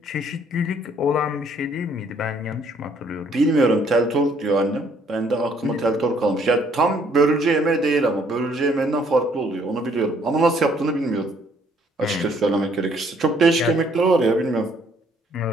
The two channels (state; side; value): normal; both; correlation 0.64